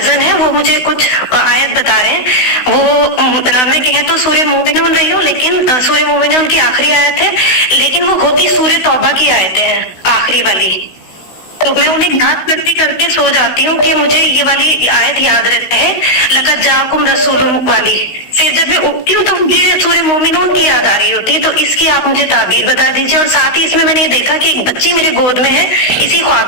ہے، وہ مجھے کچھ آیت بتا رہے ہیں. وہ میں کہیں تو سورہ مومنون رہی ہوں، لیکن سورہ مومنون کی آخری آیت ہے، لیکن وہ ہوتی سورہ توبہ کی آیتیں ہیں آخری والی. تو میں انہیں یاد کرتے کرتے سو جاتی ہوں کہ مجھے یہ والی آیت یاد رہتا ہے، لقد جاءکم رسول والی. پھر جب میں اٹھتی ہوں تو مجھے سورہ مومنون کی یاد آ رہی ہوتی ہے. تو اس کی آپ مجھے تعبیر بتا دیجیے. اور ساتھ ہی اس میں نے یہ دیکھا کہ ایک بچی میرے گود میں ہے اسی خواب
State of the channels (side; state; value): right; late; 16 ms